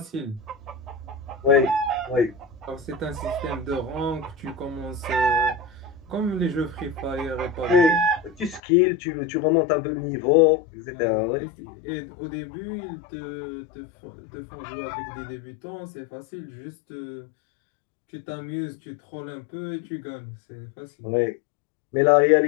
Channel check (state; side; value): drops out; right; at 8.6 s